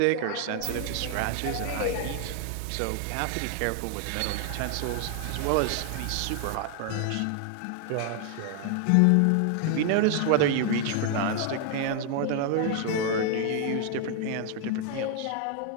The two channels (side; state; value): both; different; correlation 0.00